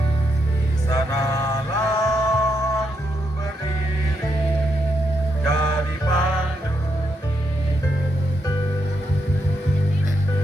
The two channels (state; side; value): normal; both; correlation 0.80